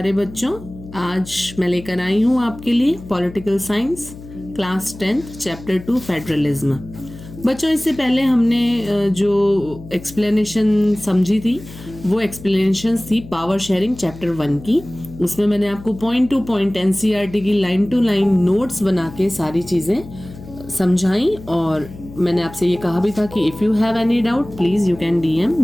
बच्चों। आज मैं लेकर आई हूँ आपके लिए political science class 10th chapter 2 federalism. बच्चों, इससे पहले हमने जो एक्सप्लेनेशन समझी थी वो एक्सप्लेनेशन थी पावर शेयरिंग चैप्टर 1 की। उसमें मैंने आपको पॉइंट टू पॉइंट एनसीईआरटी की लाइन टू लाइन नोट्स बना के सारी चीज़ें समझाई, और मैंने आपसे ये कहा भी था कि if you have any doubt please you can DM,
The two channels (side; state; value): left; noise; hum, 16 dB below the sound